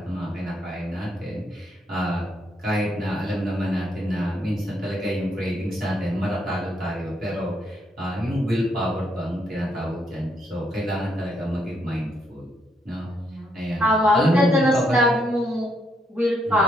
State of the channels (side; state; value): both; normal; correlation 0.75